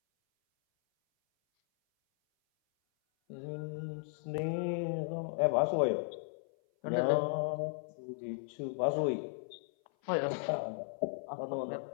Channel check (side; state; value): right; silent; 54 dB below the other